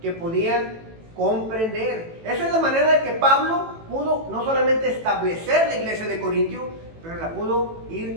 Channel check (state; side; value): late; left; 18 ms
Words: que podían comprender. Esa es la manera de que Pablo pudo no solamente establecer la iglesia de Corintio, pero la pudo